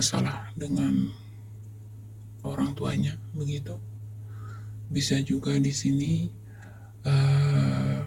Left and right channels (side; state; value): both; identical; correlation 1.00